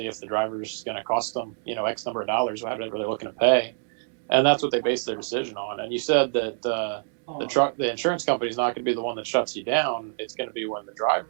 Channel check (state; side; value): silent; left; 61 dB below the other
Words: if the driver is going to cost them, X number of dollars, whatever they're looking to pay, and that's what they base their decision on. And you said that the insurance company is not going to be the one that shuts you down. It's going to be when the